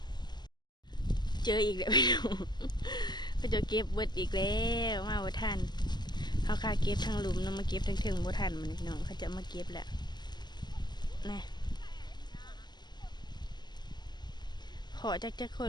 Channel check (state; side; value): late; right; 0.21 ms